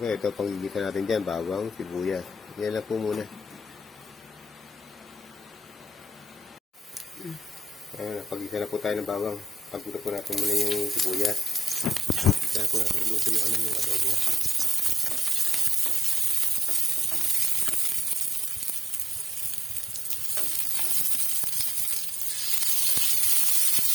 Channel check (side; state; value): both; normal; correlation 0.90